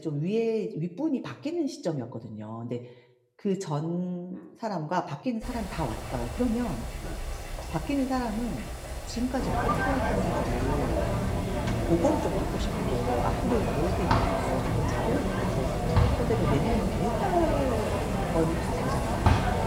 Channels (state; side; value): identical; both; correlation 1.00